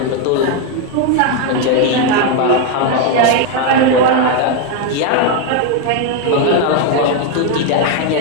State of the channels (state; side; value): different; both; correlation 0.01